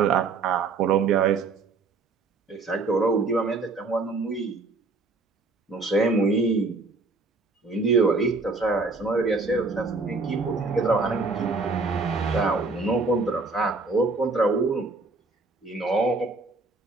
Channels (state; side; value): quieter; left; 3.9 dB